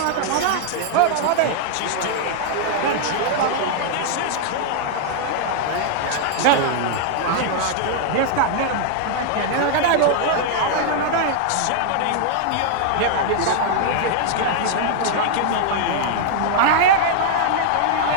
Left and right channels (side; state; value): both; different; correlation -0.01